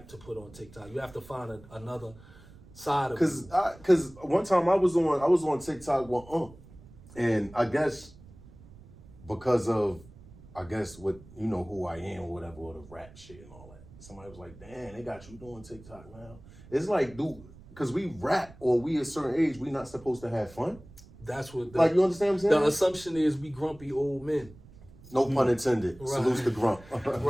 to put on TikTok. You have to find another side of it. Cause one time I was on TikTok with and I guess because of what who I am or whatever, or the rap shit and all that. Somebody was like, "Damn, they got you doing TikTok now." It's like, dude, because we rap or we a certain age, we not supposed to have fun. That's what. Like, you understand what I'm saying? The assumption is we grumpy old men. No pun intended. Right. Salutes to grump.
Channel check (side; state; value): right; noise; rumble, 21 dB below the sound